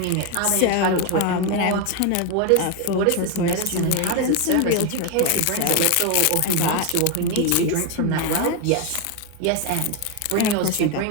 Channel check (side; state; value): both; different; correlation 0.02